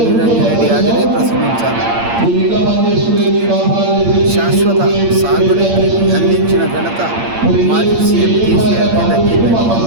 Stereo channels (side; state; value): left; late; 8.7 ms